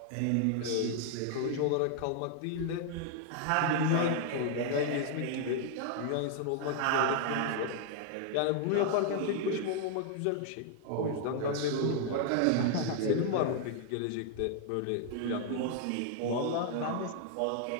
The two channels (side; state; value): both; different; correlation 0.00